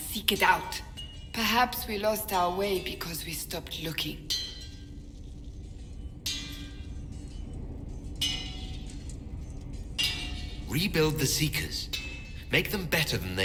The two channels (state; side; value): identical; both; correlation 1.00